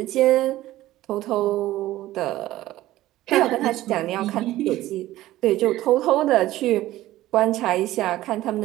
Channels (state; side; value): quieter; left; 15.6 dB